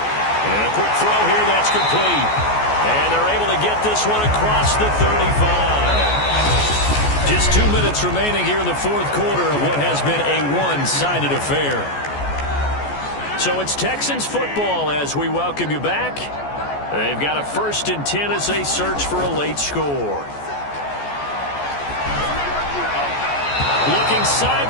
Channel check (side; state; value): right; late; 14 ms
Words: a quick throw here, that's complete. And they're able to get this one across the 35. Just 2 minutes remaining here in the 4th quarter of what has been a one-sided affair. So it's Texans football as we welcome you back. They've got a 1st and 10 as they search for a late score. Looking